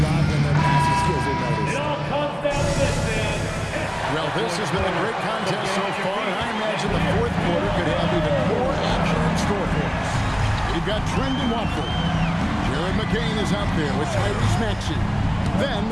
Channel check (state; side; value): identical; both; correlation 1.00